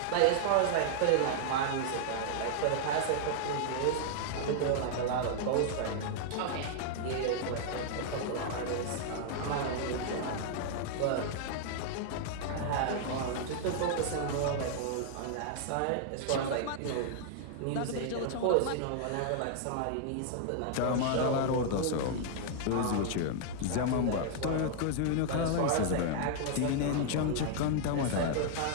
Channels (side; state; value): both; different; correlation -0.01